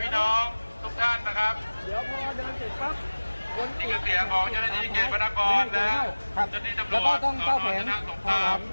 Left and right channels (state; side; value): inverted; both; correlation -1.00